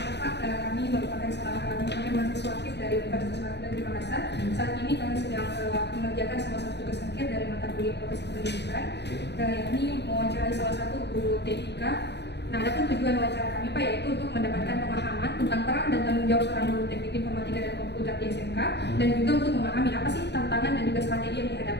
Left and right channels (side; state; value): right; late; 0.50 ms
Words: kami merupakan salah satu mahasiswa aktif dari Universitas Negeri Makassar. Saat ini kami sedang mengerjakan salah satu tugas akhir dari mata kuliah profesi kependidikan, yakni mewawancarai salah satu guru TIK. Nah, adapun tujuan wawancara kami Pak yaitu untuk mendapatkan pemahaman tentang peran dan tanggung jawab seorang guru teknik informatika dan komputer di SMK, dan juga untuk memahami apa sih tantangan dan juga strategi yang